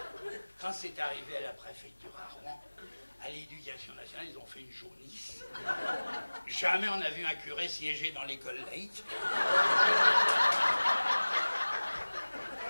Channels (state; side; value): inverted; both; correlation -1.00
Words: Quand c'est arrivé à la préfecture à Rouen, à l'éducation nationale, ils ont fait une jaunisse. Jamais on a vu un curé siéger dans l'école laïque.